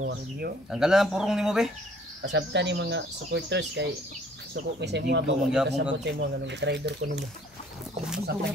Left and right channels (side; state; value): both; normal; correlation 0.58